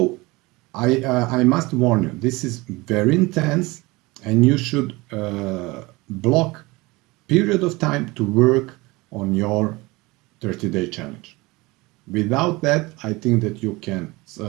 I must warn you. This is very intense, and you should block period of time to work on your 30-day challenge. Without that, I think that you can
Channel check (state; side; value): quieter; left; 22.8 dB